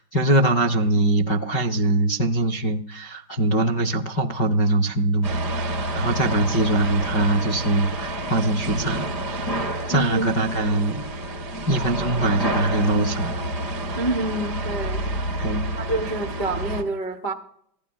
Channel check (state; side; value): late; right; 5.4 ms